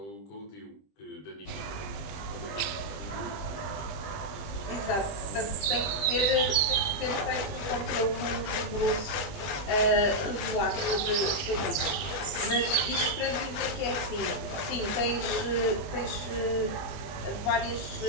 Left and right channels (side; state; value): right; late; 20 ms